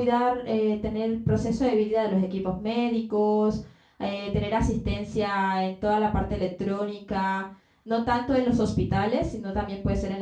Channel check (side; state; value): both; identical; correlation 1.00